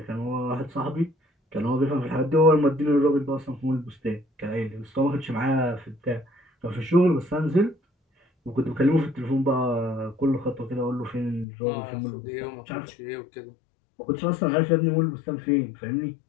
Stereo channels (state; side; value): drops out; right; at 11.5 s